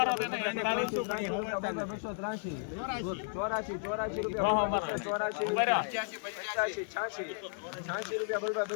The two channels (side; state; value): right; silent; 55 dB below the other